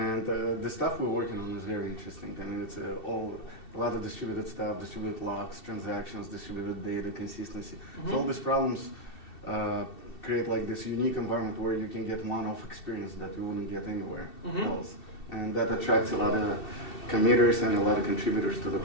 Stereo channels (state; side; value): late; right; 2.7 ms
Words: the stuff we're working on is very interesting. I mean, it's a lot of distributed stuff, distributed logs, transactions, distributed data, consistency. So all these problems create like this unique environment where you can get one-off experience that you wouldn't get anywhere else. And that attracts a lot of committers and a lot of contributors to the